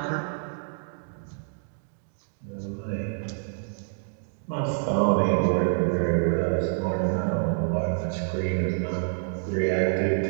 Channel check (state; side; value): silent; left; digital silence